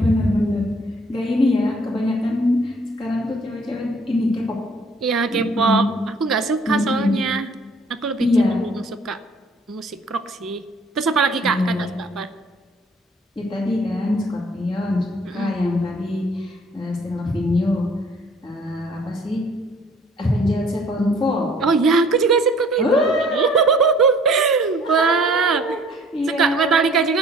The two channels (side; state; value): both; normal; correlation 0.56